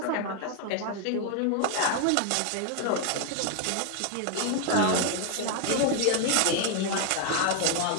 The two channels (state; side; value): different; both; correlation 0.01